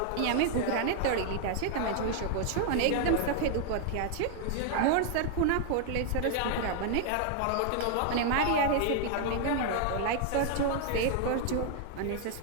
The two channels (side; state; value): both; different; correlation 0.00